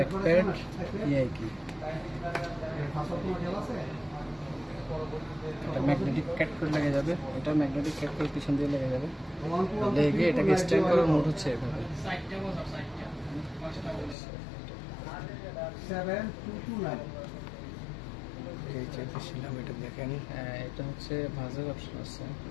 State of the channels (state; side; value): drops out; right; at 14.2 s